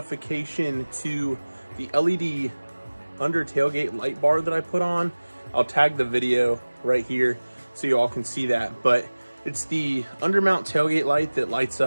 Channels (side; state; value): both; inverted; correlation -1.00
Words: to the LED under tailgate light bar that I put on. I'll tag the video right here so you all can see that. But it's the undermount tailgate light that lights